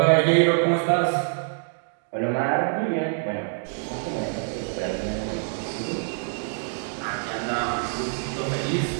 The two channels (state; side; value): silent; left; 61 dB below the other